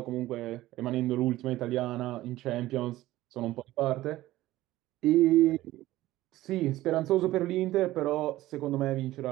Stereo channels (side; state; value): left; quieter; 16.2 dB